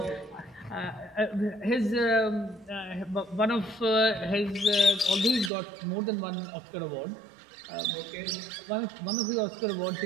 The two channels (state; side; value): drops out; left; at 5.5 s